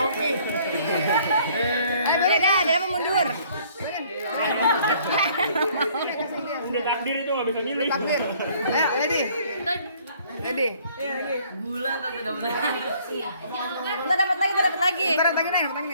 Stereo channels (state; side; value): inverted; both; correlation -0.60